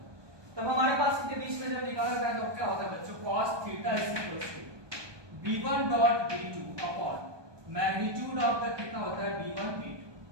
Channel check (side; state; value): left; late; 1.2 ms